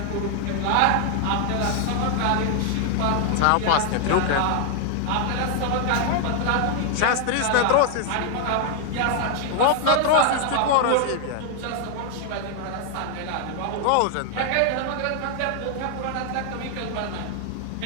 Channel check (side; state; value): both; different; correlation 0.00